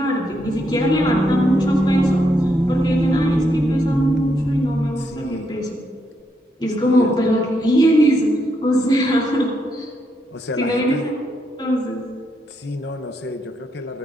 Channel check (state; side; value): normal; both; correlation 0.79